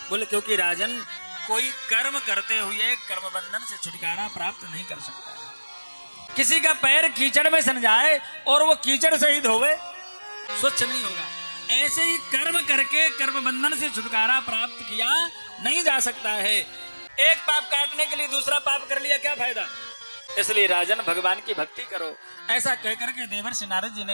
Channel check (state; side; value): inverted; both; correlation -1.00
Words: बोले क्योंकि राजन, कोई कर्म करते हुए कर्म बंधन से छुटकारा प्राप्त नहीं कर सकता है। किसी का पैर कीचड़ में सन जाए और वो कीचड़ सहित होवे, स्वच्छ नहीं होगा। ऐसे ही कर्म करके कर्म बंधन से छुटकारा प्राप्त किया नहीं जा सकता है। एक पाप काटने के लिए दूसरा पाप कर लिया, क्या फायदा? इसलिए राजन भगवान की भक्ति करो। ऐसा कहकर के देवर्षि नारद जी